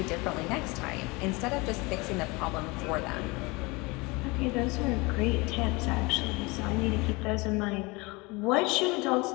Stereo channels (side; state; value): right; quieter; 25.3 dB